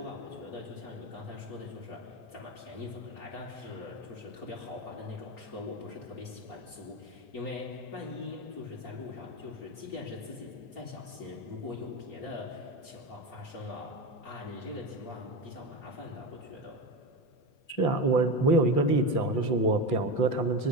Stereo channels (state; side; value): late; right; 8.2 ms